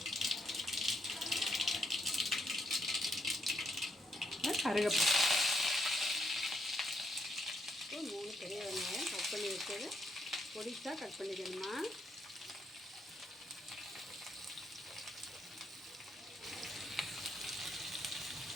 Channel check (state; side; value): normal; both; correlation 0.77